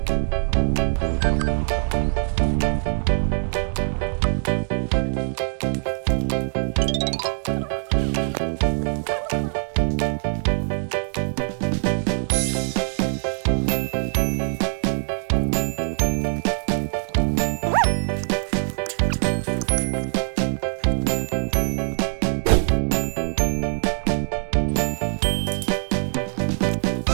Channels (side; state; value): left; silent; digital silence